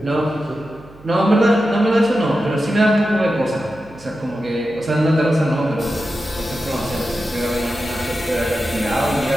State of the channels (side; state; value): right; noise; hum, 24 dB below the sound